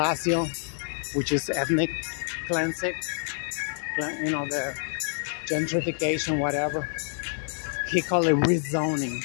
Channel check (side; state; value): right; silent; 60 dB below the other